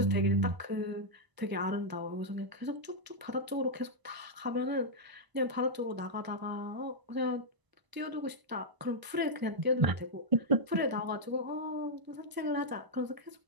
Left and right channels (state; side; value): late; left; 1.0 ms